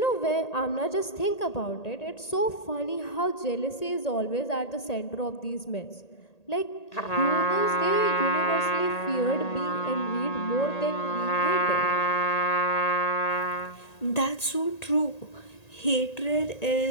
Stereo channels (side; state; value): right; late; 1.8 ms